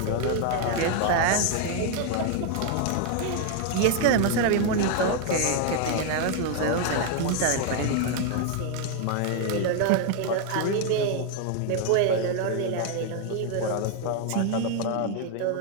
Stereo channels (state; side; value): different; both; correlation 0.00